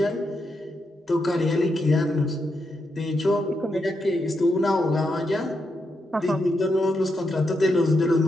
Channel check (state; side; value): normal; both; correlation 0.83